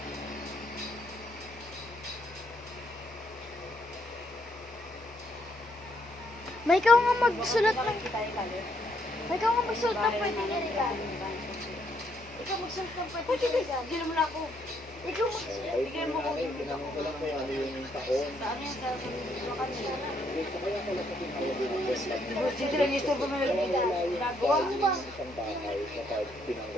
May ikaw nga magsulat ng pwede i-regalo. Ikaw magsulat ng pwede i-regalo. Bigyan mo na ako. Ikaw magsulat. Bigyan mo ako. Saan yan? Sa kanila. Dito lang yung store ko may ginagawa.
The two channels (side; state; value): both; normal; correlation 0.72